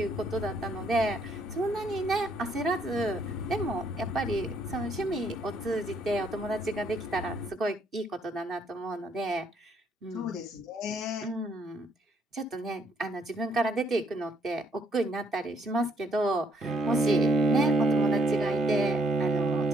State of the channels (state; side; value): normal; both; correlation 0.69